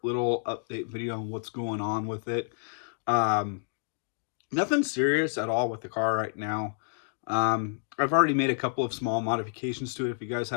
little update video on what's going on with it. Nothing serious at all with the car right now. I've already made a couple of small modifications to it, if you guys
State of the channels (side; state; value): right; silent; digital silence